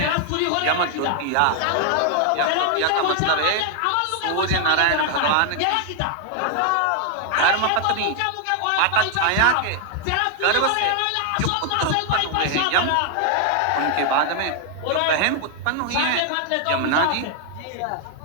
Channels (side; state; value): both; different; correlation 0.00